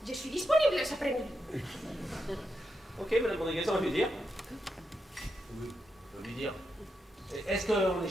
je suis disponible cet après-midi. Ok, madame Rodriguez, on va lui dire. Oui, on va lui dire. Est-ce qu'en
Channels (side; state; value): both; normal; correlation 0.85